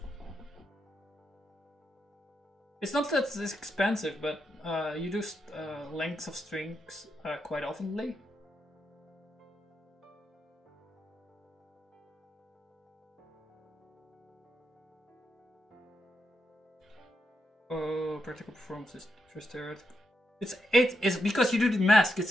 It's not that it's expensive, but you do lengths of strings quite oftenly. Oh, practical performance is first theoretical. It's 8. It's because you do the mask.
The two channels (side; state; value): both; normal; correlation 0.84